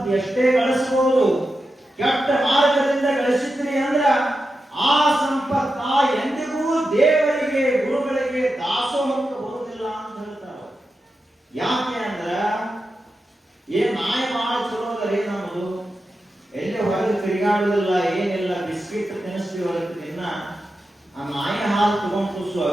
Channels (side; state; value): both; normal; correlation 0.90